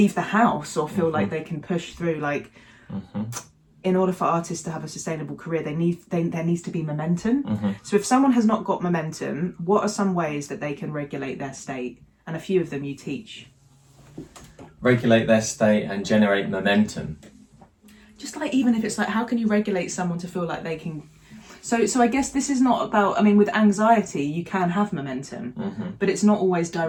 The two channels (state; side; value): identical; both; correlation 1.00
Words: the house or feel like they can push through. Like in order for artists to have a sustainable career, there needs to be momentum. So if someone has not got momentum, what are some ways that they can regulate their state? And a few of them you teach. Regulate their state and generate momentum. Just like, even if it's like, how can you regulate someone to feel like they can? So I guess this is not about, I mean, with anxiety, you can have momentum, but it's not always